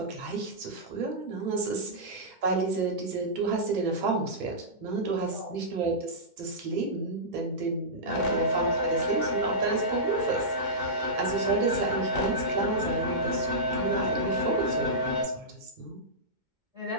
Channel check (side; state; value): left; late; 2.2 ms